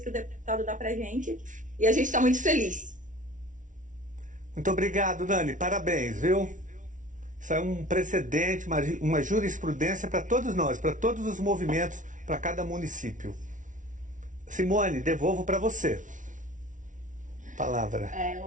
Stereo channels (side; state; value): left; late; 0.37 ms